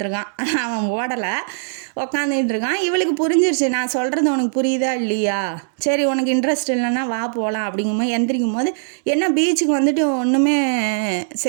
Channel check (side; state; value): left; silent; digital silence